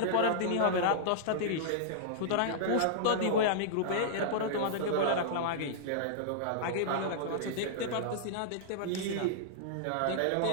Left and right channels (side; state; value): both; different; correlation -0.02